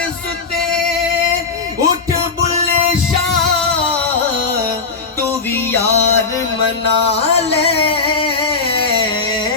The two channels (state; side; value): quieter; right; 4.5 dB